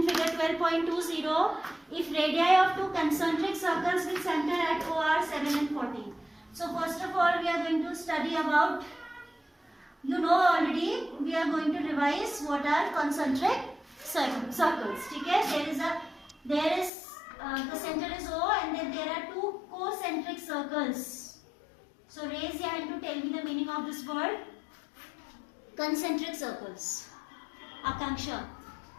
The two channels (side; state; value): right; drops out; at 16.9 s